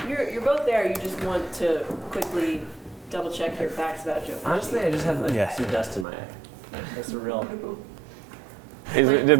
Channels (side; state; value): left; drops out; at 6.1 s